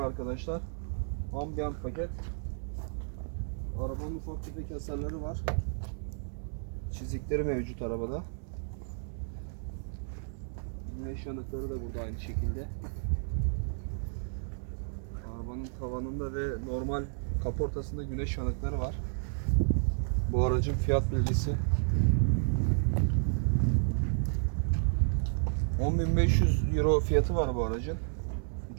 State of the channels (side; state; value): left; silent; digital silence